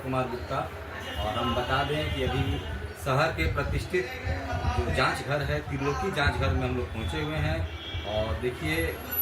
कुमार गुप्ता और हम बता दें कि अभी शहर के प्रतिष्ठित जो जांच घर है त्रिलोकी जांच घर में हम लोग पहुंचे हुए हैं। और देखिए,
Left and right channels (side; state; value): both; identical; correlation 1.00